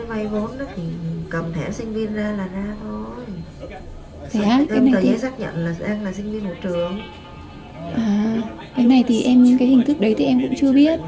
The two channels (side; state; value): both; identical; correlation 1.00